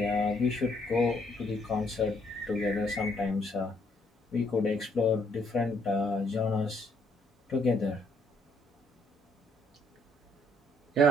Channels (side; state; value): both; normal; correlation 0.69